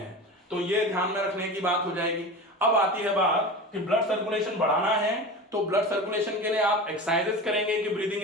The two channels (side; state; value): both; normal; correlation 0.30